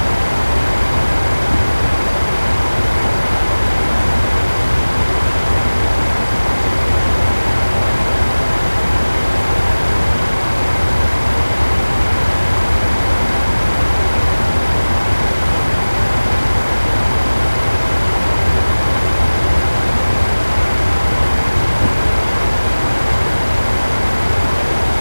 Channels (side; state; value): both; inverted; correlation -1.00